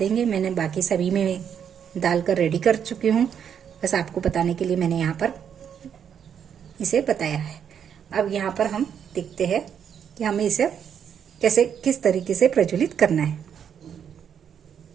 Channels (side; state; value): left; quieter; 8.2 dB